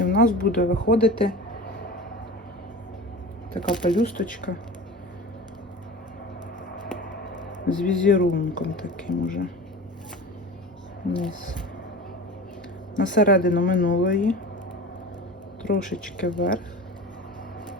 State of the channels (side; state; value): both; normal; correlation 0.34